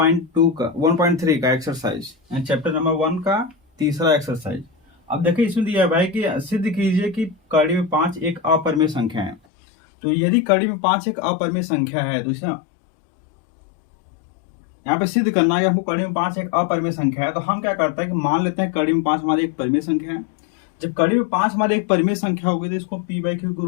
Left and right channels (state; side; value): drops out; right; at 9.4 s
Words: का 1.3 का एक्सरसाइज एंड चैप्टर नंबर 1 का तीसरा एक्सरसाइज। अब देखिए, इसमें दिया है भाई कि सिद्ध कीजिए कि कड़ी में 5 एक अपरिमेय संख्या है। तो यदि कड़ी में 5 एक अपरिमेय संख्या है तो इसे यहाँ पे सिद्ध करना है कि हमको कड़ी में 5 एक अपरिमेय संख्या है। तो हम क्या करते हैं कि मान लेते हैं कड़ी में 5 हमारी एक परिमेय संख्या है। जब कड़ी में 5 हमारी एक परिमेय संख्या होगी तो इसको पी बाई क्यू के